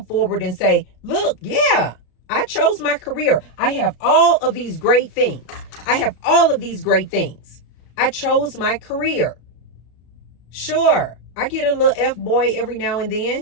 and say, look, yeah, I chose my career. I have all of these great things. I have all of these great things. I chose my career. Sure, I get a little F-boy every now and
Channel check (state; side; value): late; right; 33 ms